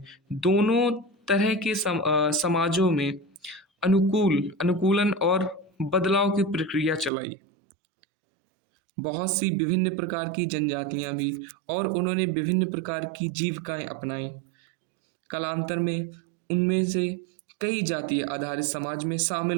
दोनों तरह के समाजों में अनुकूलन और बदलाव की प्रक्रिया चलाई। बहुत सी विभिन्न प्रकार की जनजातियां भी, और उन्होंने विभिन्न प्रकार की जीविकाएं अपनाई। कालांतर में उनमें से कई जातीय आधारित समाज में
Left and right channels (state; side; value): drops out; left; at 7.1 s